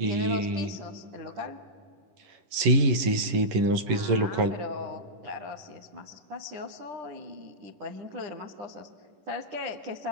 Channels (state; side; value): late; left; 11 ms